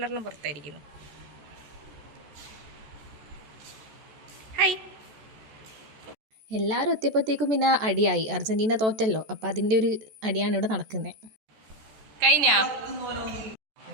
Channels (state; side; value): late; left; 14 ms